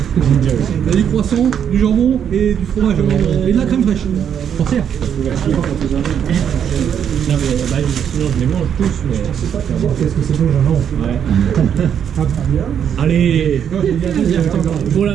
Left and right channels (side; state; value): left; quieter; 8.5 dB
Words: il y a du croissant, du jambon et du fromage et de la crème fraîche. Forcière. Non mais bah, sinon je les mange tous, mais... Qu'est-ce que c'est bon, jambon? Ouais. Allez, faut la